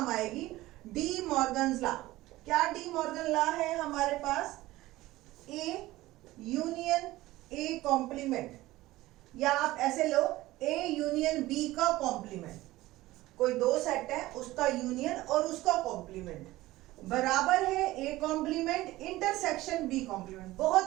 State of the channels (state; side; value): quieter; left; 17.6 dB